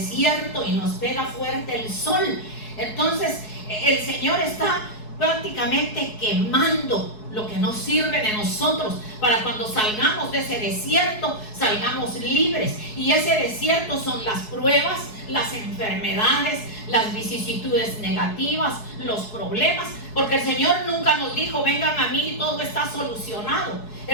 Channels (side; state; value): right; late; 4.7 ms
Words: y nos pega fuerte el sol, entonces el Señor está prácticamente quemando lo que nos sirve de nosotros, para cuando salgamos de ese desierto, salgamos libres. Y ese desierto son las pruebas, las enfermedades, las vicisitudes negativas, los problemas, porque el Señor nunca nos dijo: vengan a mí y todo está solucionado.